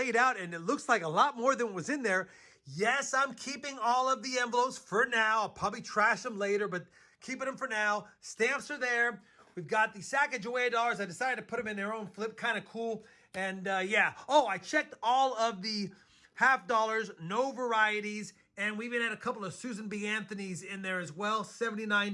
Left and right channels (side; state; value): both; identical; correlation 1.00